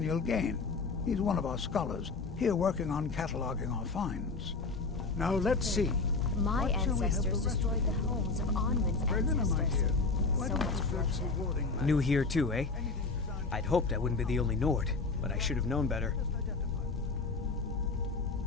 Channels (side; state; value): right; quieter; 4.0 dB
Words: Gain? He's one of our scholars, here working on cataloging our finds. Now, let's see. My What shall we have ancestors the rest destroyed the homes of Onwin's Berliner, my ancestors. dear, why So don't you much search bloodshed. rewarding matters? New here too, eh? I'd hoped I wouldn't be the only Nord, but I should have known better.